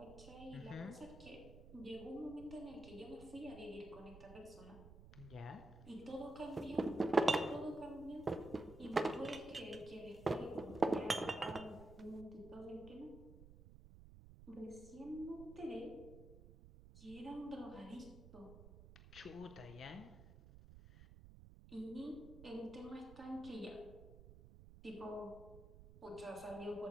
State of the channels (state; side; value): noise; right; rumble, 16 dB below the sound